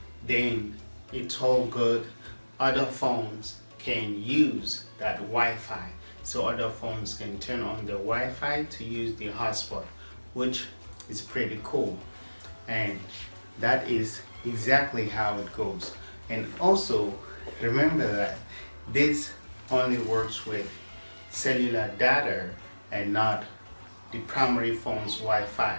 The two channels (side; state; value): both; inverted; correlation -1.00